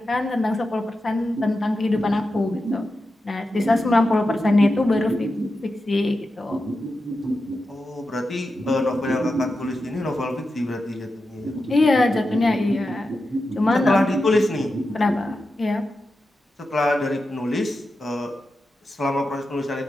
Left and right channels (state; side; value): normal; both; correlation 0.90